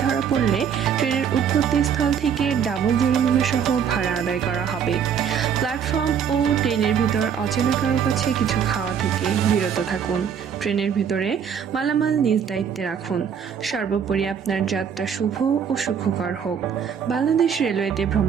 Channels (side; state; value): left; quieter; 7.7 dB